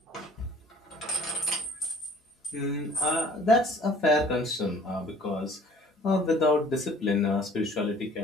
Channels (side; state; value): both; normal; correlation 0.52